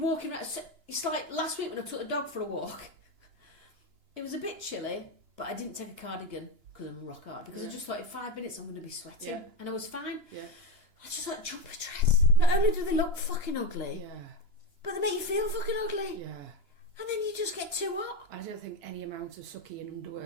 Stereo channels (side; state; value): left; late; 2.9 ms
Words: around. It's like last week when I took the dog for a walk. It was a bit chilly, but I didn't take a cardigan because I'm rock hard. Because I just thought in 5 minutes I'm going to be sweating, Yeah. and I was fine. Yeah. I just like jumper dress. Not only do they look fucking ugly, Yeah. but they make you feel fucking ugly. Yeah. And then you just get too hot. I don't think any amount of sucky in